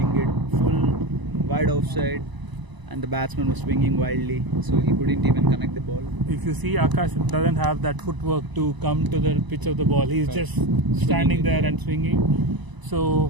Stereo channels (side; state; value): left; late; 1.0 ms